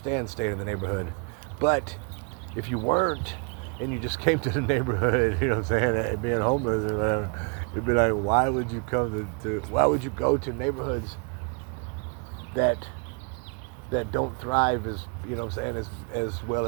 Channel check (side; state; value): left; quieter; 33.3 dB